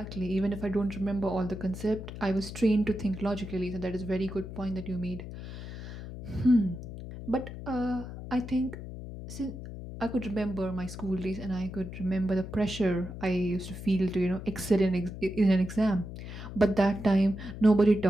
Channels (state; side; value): noise; left; hum, 10 dB below the sound